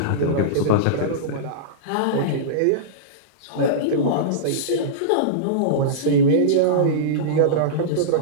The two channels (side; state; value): both; different; correlation -0.04